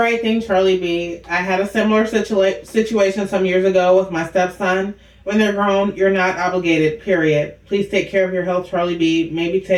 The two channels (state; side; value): identical; both; correlation 1.00